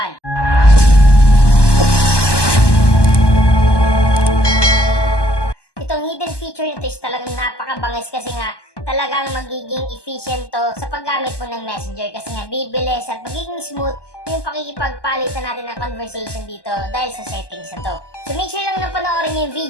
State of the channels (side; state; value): right; late; 1.2 ms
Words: Itong hidden feature nito is talagang napakabangis kasi nga talagang magiging efficient to sa paggamit mo ng Messenger kasi nga bibilis at magiging smooth yung pakikipagpalitan natin ng conversation dito dahil sa settings na to. So make sure lang na panoorin yung